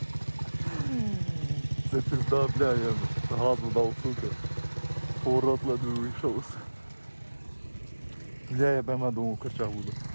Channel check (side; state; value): both; inverted; correlation -1.00